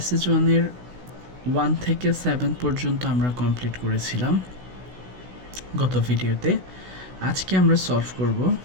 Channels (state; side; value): late; left; 16 ms